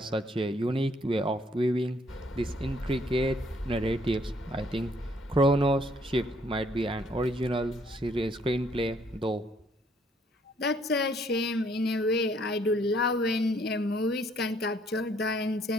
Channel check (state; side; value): normal; both; correlation 0.66